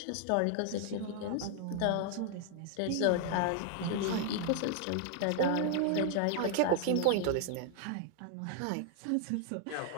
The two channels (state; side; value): different; both; correlation 0.00